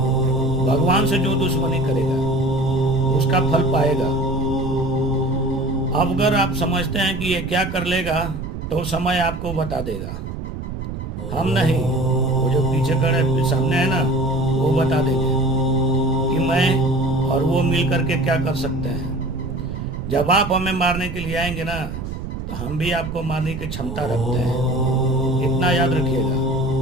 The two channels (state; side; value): noise; right; rumble, 7 dB below the sound